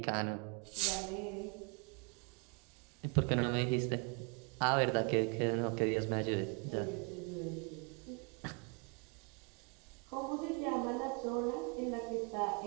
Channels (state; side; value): quieter; left; 34.7 dB